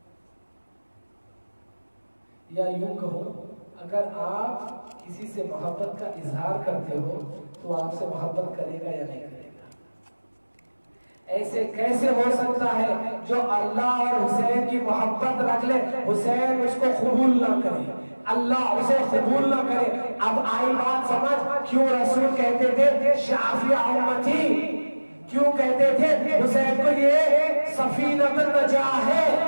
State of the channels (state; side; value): inverted; both; correlation -1.00